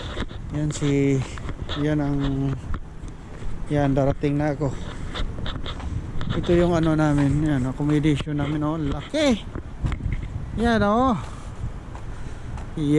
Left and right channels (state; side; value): identical; both; correlation 1.00